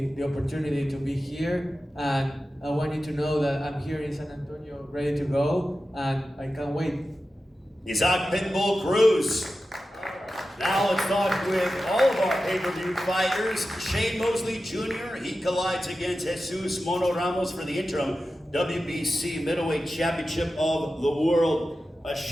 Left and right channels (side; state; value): both; normal; correlation 0.93